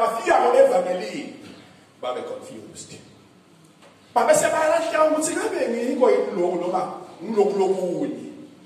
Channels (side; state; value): both; identical; correlation 1.00